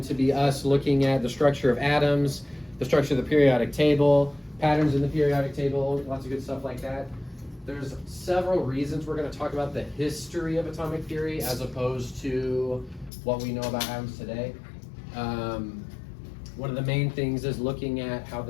to be us looking at the structure of atoms, the structure of the periodic table, patterns in the periodic table, lots of good stuff like that. There's several reasons we're going to talk about the history of atomic theory as opposed to what we know about atoms today. One of the main things is looking at how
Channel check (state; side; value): drops out; right; at 13.1 s